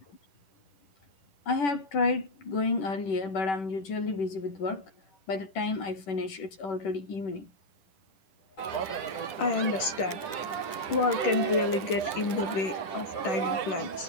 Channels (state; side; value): late; right; 10 ms